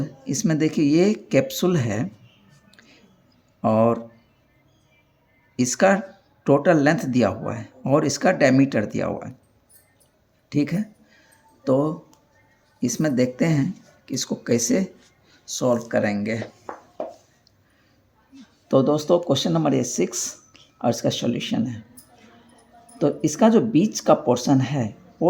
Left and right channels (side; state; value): both; identical; correlation 1.00